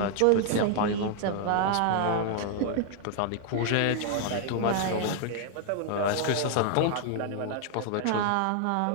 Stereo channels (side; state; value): both; different; correlation 0.00